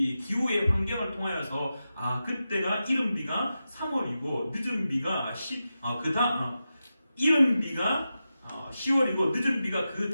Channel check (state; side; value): inverted; both; correlation -0.91